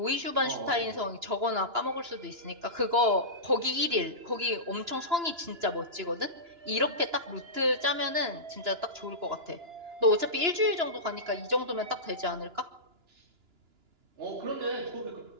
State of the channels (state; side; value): late; left; 2.9 ms